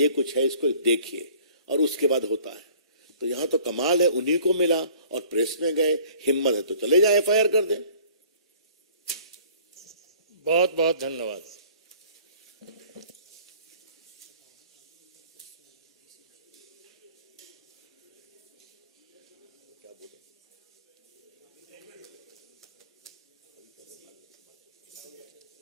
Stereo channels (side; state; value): both; inverted; correlation -0.52